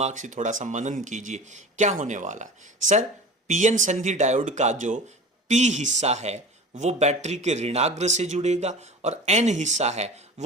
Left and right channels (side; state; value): both; normal; correlation 0.37